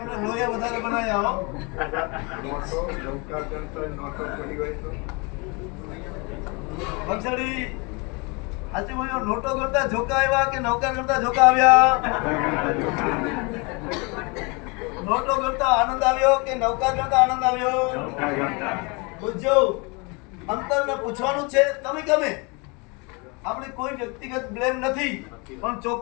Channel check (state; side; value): quieter; right; 29.7 dB